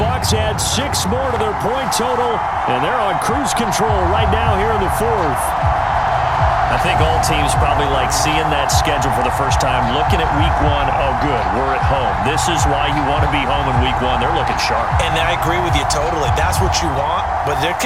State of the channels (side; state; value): both; identical; correlation 1.00